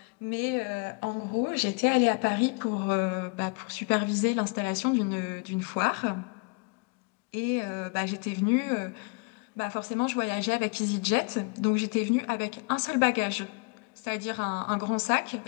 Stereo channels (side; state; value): right; quieter; 32.6 dB